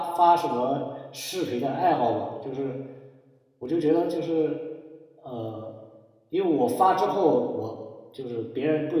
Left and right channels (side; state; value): both; identical; correlation 1.00